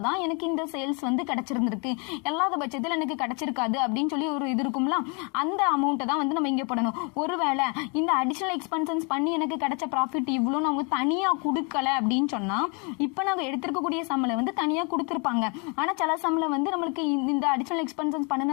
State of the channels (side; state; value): right; quieter; 33.8 dB